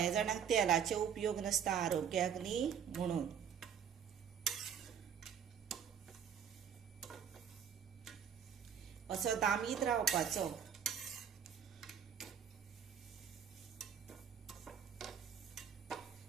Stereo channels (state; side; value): quieter; left; 8.0 dB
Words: जाणांक तेलाचे उपयोग नासता आरोग्याक न्ही म्हणून। असो दामीत रावपाचो।